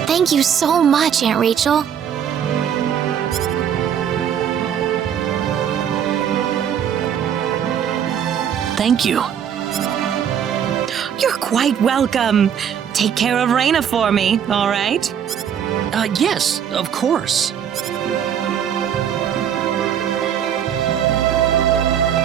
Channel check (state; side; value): quieter; left; 8.7 dB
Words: Thank you so much, Aunt Rachel. Thank you. You're quite welcome. Take care of Raina for me, all right? Yes, of course.